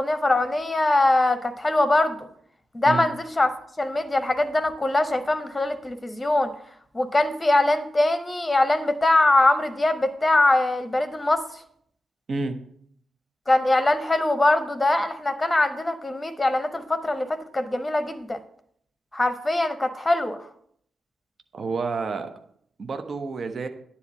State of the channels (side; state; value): both; normal; correlation 0.95